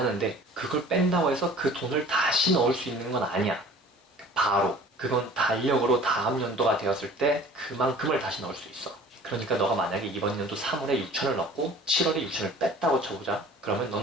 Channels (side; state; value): both; normal; correlation 0.47